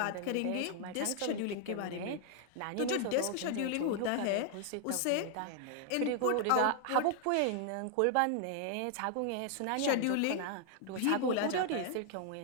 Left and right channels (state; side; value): different; both; correlation 0.00